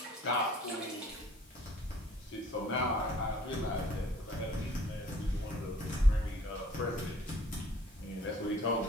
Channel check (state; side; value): normal; both; correlation 0.55